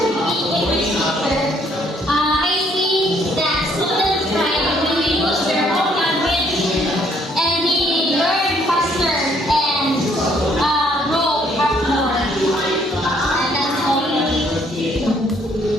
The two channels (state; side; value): normal; both; correlation 0.66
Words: be English teacher, I see that students thrive when they use their own language and they learn faster and grow up more. And that's all.